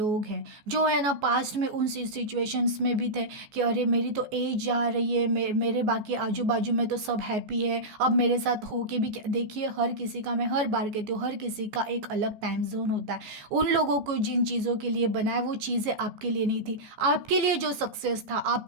हैं जो है ना पास्ट में उन सिचुएशंस में भी थे कि अरे मेरी तो एज जा रही है, मेरे बाकी आजू बाजू में तो सब हैप्पी है, अब मेरे साथ हो के भी क्या। देखिए हर किसी का, मैं हर बार कहती हूँ, हर किसी का एक अलग टाइम जोन होता है। उन लोगों को जिन चीज़ों के लिए बनाया वो चीज़ें आपके लिए नहीं थी। आपके लिए जो सक्सेस था,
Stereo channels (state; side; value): late; left; 14 ms